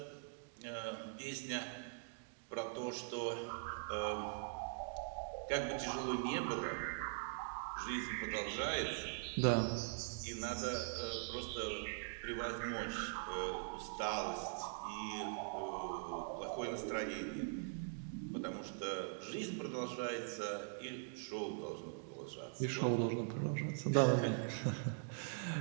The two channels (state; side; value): silent; left; digital silence